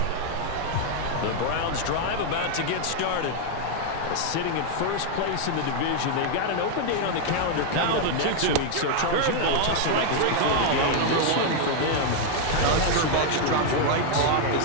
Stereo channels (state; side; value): different; both; correlation 0.00